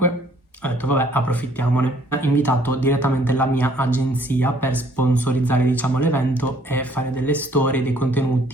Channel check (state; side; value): normal; both; correlation 0.62